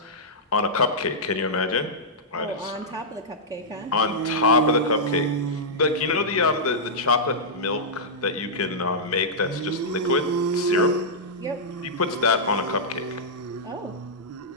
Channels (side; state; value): both; normal; correlation -0.11